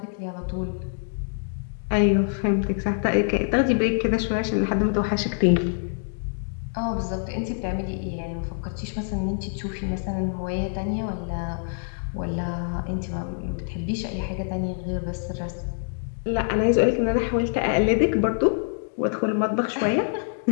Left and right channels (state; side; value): silent; right; digital silence